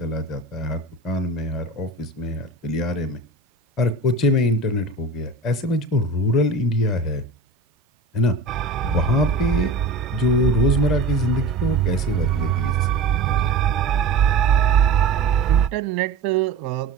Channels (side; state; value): left; quieter; 3.3 dB